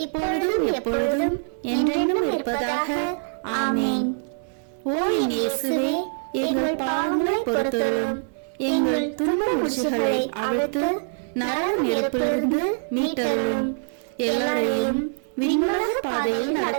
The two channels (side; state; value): left; silent; digital silence